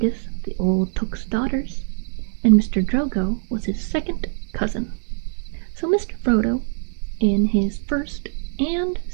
of the old Took's daughters, and Mr. Drogo was his second cousin. So Mr. Frodo, in his first and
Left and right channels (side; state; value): left; silent; digital silence